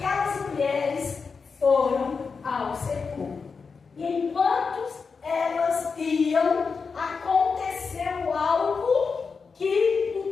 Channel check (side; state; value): right; quieter; 5.1 dB